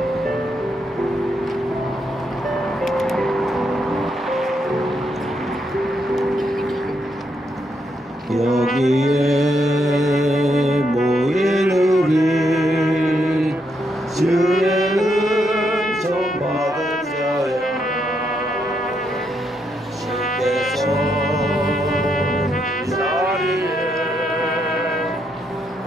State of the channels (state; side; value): normal; both; correlation 0.78